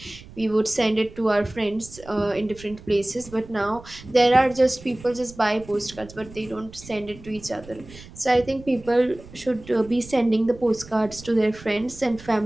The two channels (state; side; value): noise; right; rumble, 19 dB below the sound